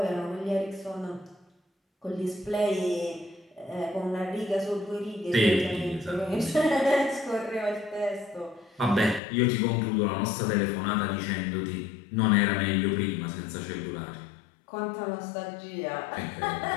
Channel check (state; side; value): drops out; right; at 9.2 s